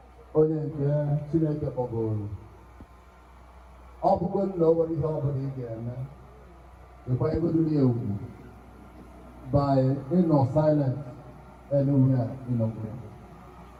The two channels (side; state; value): both; identical; correlation 1.00